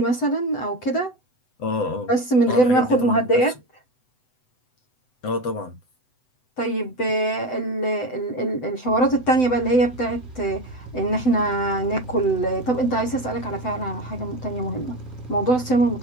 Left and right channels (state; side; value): late; right; 7.9 ms